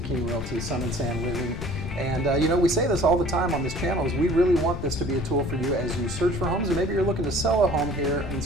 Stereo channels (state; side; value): noise; left; rumble, 7 dB below the sound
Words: King Realty, Sun and Sand Living. And we say this all the time on this channel, is we really want this to be a tool for you as you search for homes, and maybe you're looking to sell a home here in